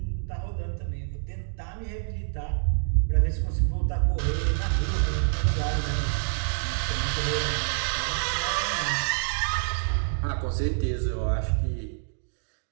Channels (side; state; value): left; silent; digital silence